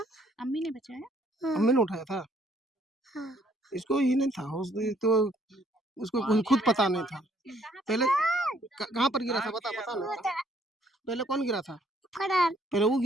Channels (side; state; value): both; normal; correlation 0.65